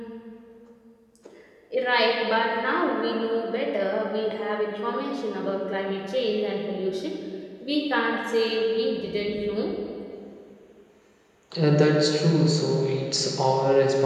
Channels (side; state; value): both; identical; correlation 1.00